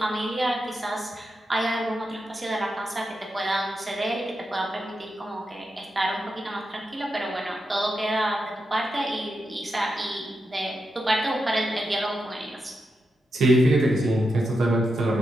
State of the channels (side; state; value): both; normal; correlation 0.87